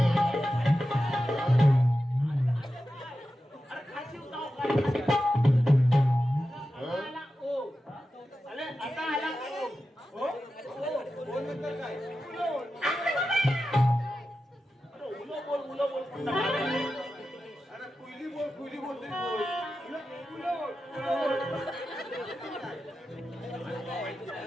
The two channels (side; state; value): both; normal; correlation 0.92